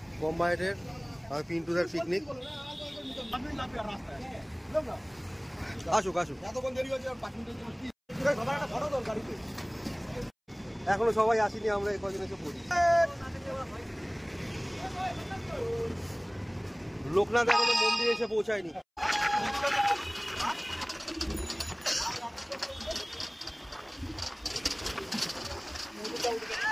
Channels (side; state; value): both; identical; correlation 1.00